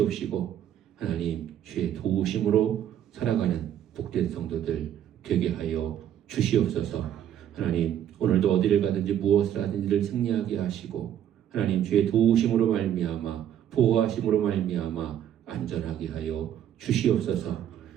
하나님 주의 도우심으로 살아가는 복된 성도들 되게 하여 주시옵소서. 하나님 오늘도 어디를 가든지 무엇을 하든지를 승리하게 하시고 하나님 주의 도우심으로 말미암아 보호하심으로 말미암아 안전하게 하여 주시옵소서.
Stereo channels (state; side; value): quieter; left; 10.5 dB